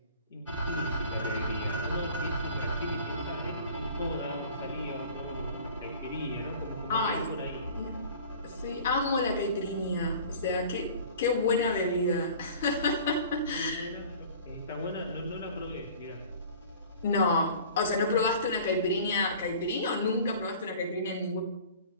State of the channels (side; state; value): both; inverted; correlation -0.45